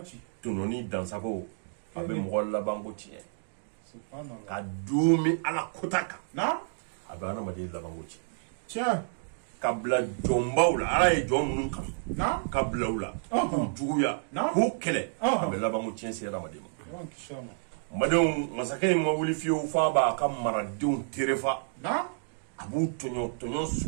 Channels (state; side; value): silent; left; digital silence